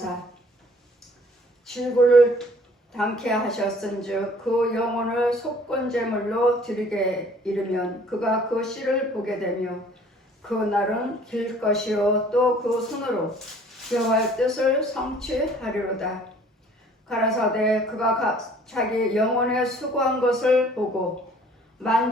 질고를 당케 하셨은즉 그 영혼을 속건제물로 드리게 이르면 그가 그 씨를 보게 되며 그 날은 길 것이요 또 그 손으로 여호와의 뜻을 성취하리로다. 가라사대 그가 자기 영혼에 수고한 것을 보고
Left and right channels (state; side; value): normal; both; correlation 0.54